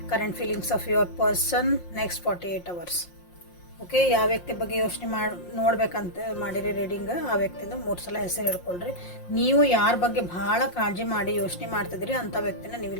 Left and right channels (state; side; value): late; right; 5.6 ms